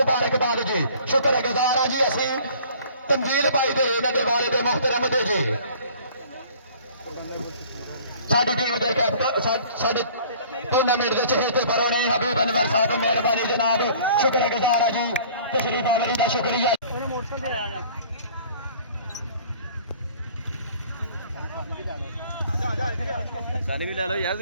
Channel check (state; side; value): inverted; both; correlation -0.51